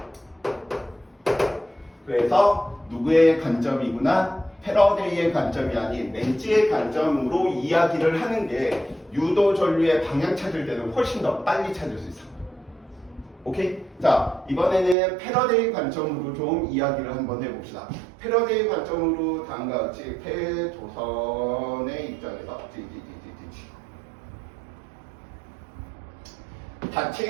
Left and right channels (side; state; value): left; drops out; at 15.0 s